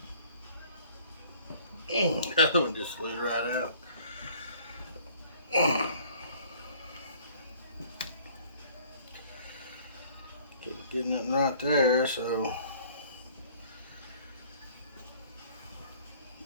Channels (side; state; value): both; inverted; correlation -0.54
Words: That one just slid right out. Keep getting it right there, so